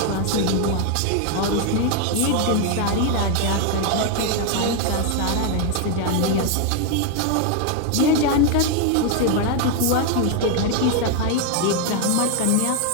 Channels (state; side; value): different; both; correlation 0.01